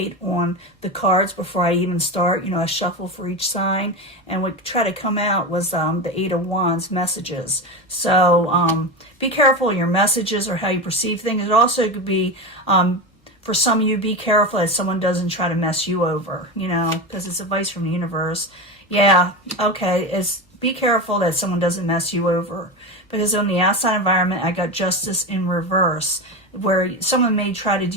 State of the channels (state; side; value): normal; both; correlation 0.20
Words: on the cards before I even start. You know, I shuffle for each sign, and what try to come out was the Eight of Wands messages. So be careful of your messages or how you perceive things. It also could be for some of you, be careful that someone doesn't try to mess you over, you know, because it's advice from the universe. Yeah, okay, be careful that someone doesn't mess you over. Because on the outside environment, I got Justice in reverse, where someone may try to